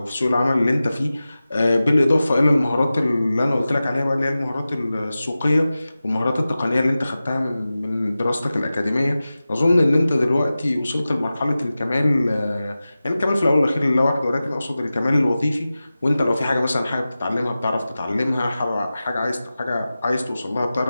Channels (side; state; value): both; inverted; correlation -0.95